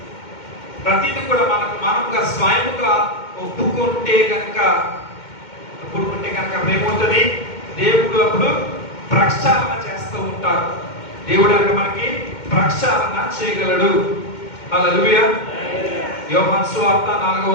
ప్రతిది కూడా మనంగా స్వయంగా ఒప్పుకుంటే కనుక ఏమవుతుంది? దేవుడు అప్పుడు ప్రక్షాళన చేస్తూ ఉంటారు. దేవుడు అక్కడ మనకి ప్రక్షాళన చేయగలడు. హల్లెలూయా. యోహాను సువార్త 4వ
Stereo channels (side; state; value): right; late; 2.2 ms